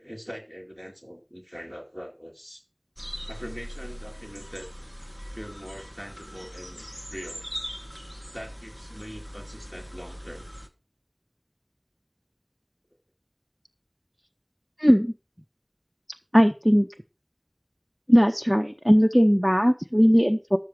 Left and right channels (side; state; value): both; identical; correlation 1.00